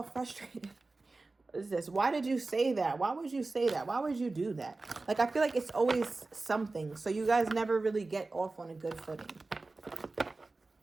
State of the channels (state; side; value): quieter; left; 3.5 dB